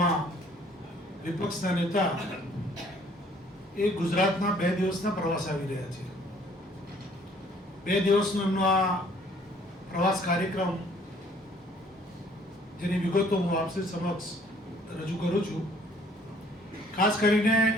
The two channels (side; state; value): both; normal; correlation 0.59